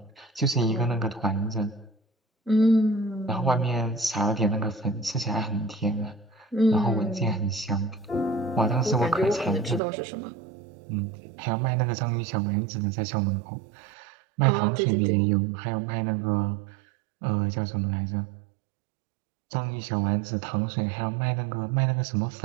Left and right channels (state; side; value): drops out; left; at 9.8 s